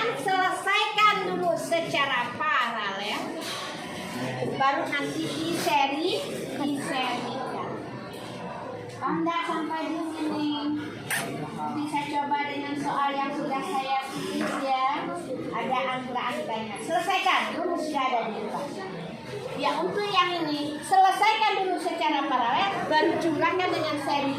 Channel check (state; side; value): identical; both; correlation 1.00